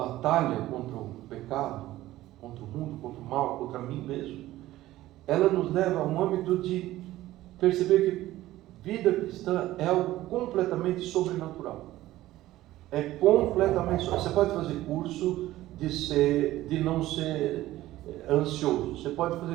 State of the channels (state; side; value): quieter; left; 15.6 dB